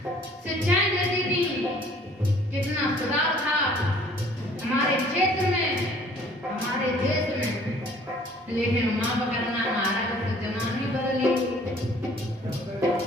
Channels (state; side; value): normal; both; correlation 0.55